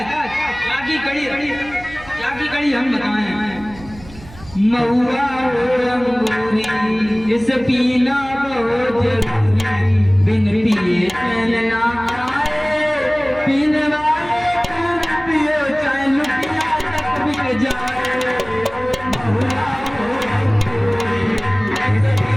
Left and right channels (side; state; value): right; noise; hum, 19 dB below the sound